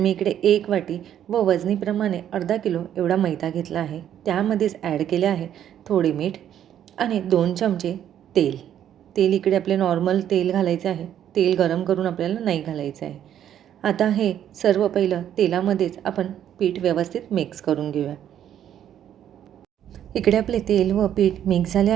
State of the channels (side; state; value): left; quieter; 10.3 dB